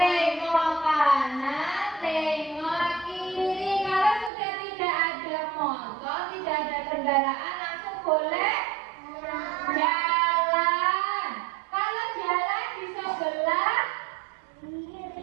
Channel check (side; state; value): left; drops out; at 4.3 s